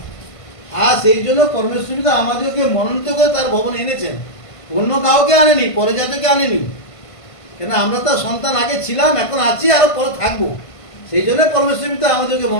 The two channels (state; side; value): late; right; 1.5 ms